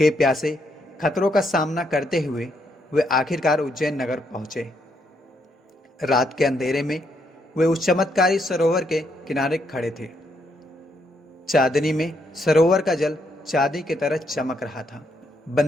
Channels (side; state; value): both; normal; correlation 0.76